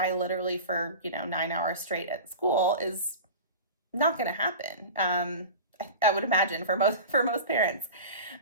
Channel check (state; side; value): inverted; both; correlation -0.32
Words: literally for, 9 hours straight at school is not going to happen. I would imagine for most parents.